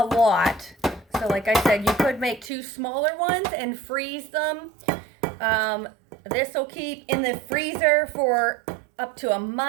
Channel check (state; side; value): drops out; left; at 2.5 s